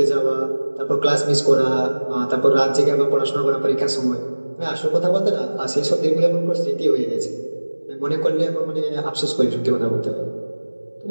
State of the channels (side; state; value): both; inverted; correlation -1.00